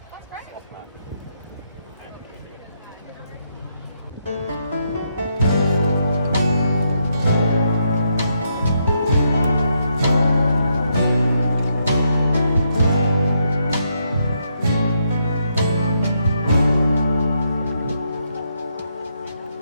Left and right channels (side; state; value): both; inverted; correlation -0.78